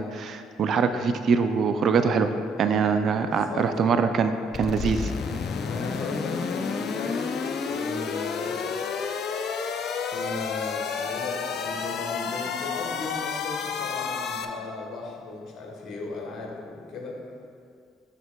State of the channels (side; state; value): both; normal; correlation 0.63